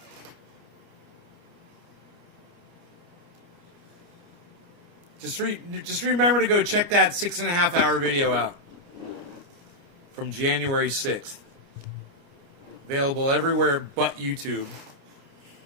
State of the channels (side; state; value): left; late; 29 ms